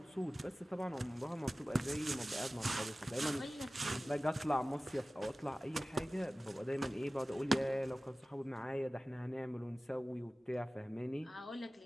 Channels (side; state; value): both; normal; correlation 0.97